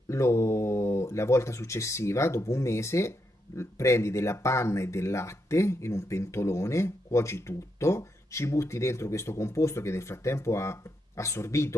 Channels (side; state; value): both; normal; correlation 0.81